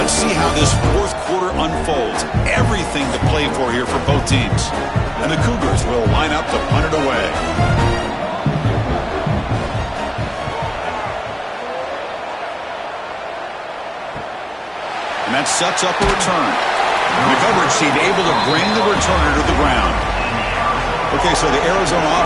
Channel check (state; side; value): identical; both; correlation 1.00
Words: see how this fourth quarter unfolds. Everything to play for here for both teams. And the Cougars will line up to punt it away. And that sets up a return. The coverage team able to bring the returner to the ground. Okay, so the Arizona